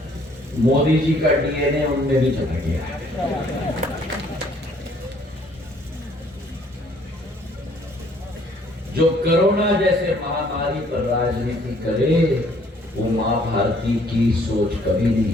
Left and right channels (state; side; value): normal; both; correlation 0.62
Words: मोदी जी का डीएनए उनमें भी चला गया। जो कोरोना जैसे महामारी पर राजनीति करे वो मां भारती की सोच कभी